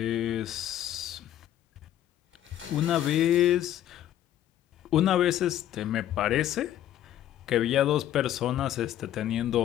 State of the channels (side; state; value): right; quieter; 11.9 dB